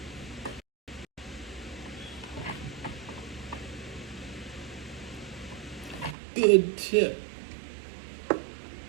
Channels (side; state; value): left; drops out; at 6.2 s